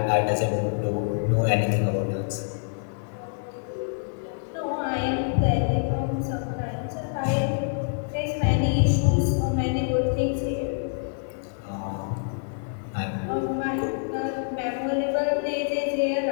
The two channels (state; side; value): silent; right; 61 dB below the other